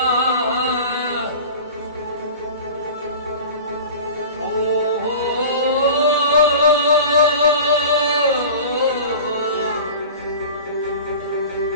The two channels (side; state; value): both; inverted; correlation -0.37